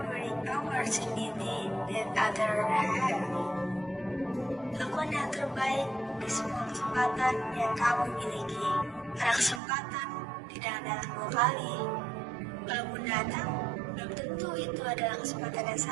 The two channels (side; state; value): left; drops out; at 9.6 s